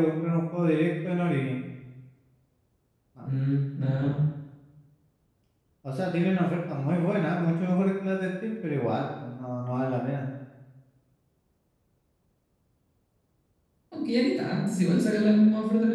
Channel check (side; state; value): both; identical; correlation 1.00